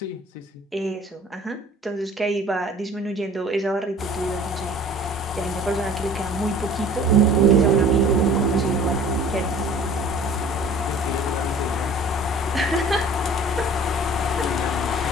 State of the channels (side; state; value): both; normal; correlation 0.47